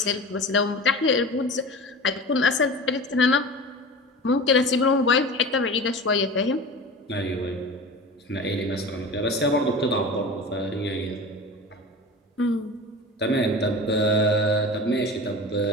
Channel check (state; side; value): normal; both; correlation 0.33